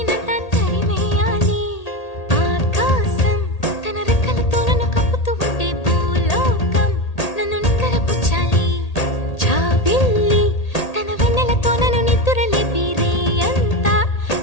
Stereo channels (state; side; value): late; right; 1.8 ms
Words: తరిమేయాలి. ఆకాశం తన రెక్కలతో నన్ను కప్పుతూ ఉంటే భూలోకం నన్ను నిద్రపుచ్చాలి. జాబిల్లి తన వెన్నెలతో నన్ను నిద్రలేపి రే అంతా